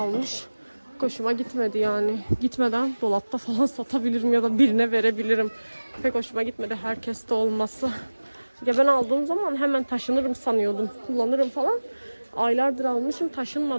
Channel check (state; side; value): inverted; both; correlation -1.00